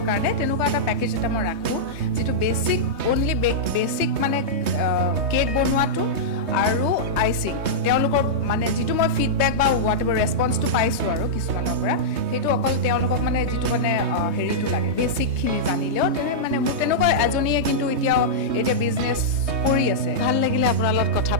কাৰণে তেনেকুৱা এটা পেকেজ এটা মই ৰাখোঁ যিটো বেছিক অনলি বেছিক মানে কেক বনোৱাটো আৰু আইচিং তেওঁলোকৰ মানে যিটো মই ফিডবেক বা হোৱাট এভাৰ ৰেছপন্সটো পাইছোঁ আৰু কিছুমানৰ পৰা সেইটো অকল তেওঁলোকক মানে যিটো মানে হেৰিটো লাগে বেছিকখিনি জানিলেও মানে মোৰ তেনেকুৱা এজনীয়ে কিন্তু এতিয়া বিজনেছ কৰি আছে ভাল লাগিলে আপোনাৰ লগত কথা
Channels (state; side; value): late; left; 3.2 ms